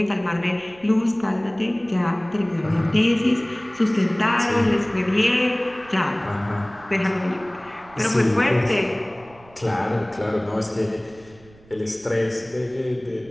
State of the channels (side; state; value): right; noise; rumble, 26 dB below the sound